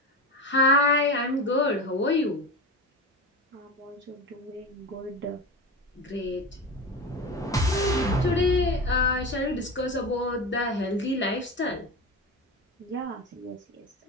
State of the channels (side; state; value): both; normal; correlation 0.24